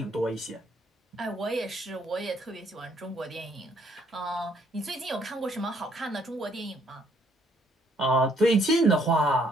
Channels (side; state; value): both; normal; correlation 0.67